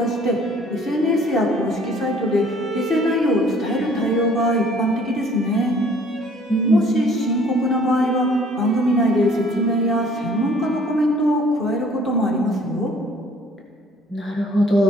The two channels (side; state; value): both; normal; correlation 0.56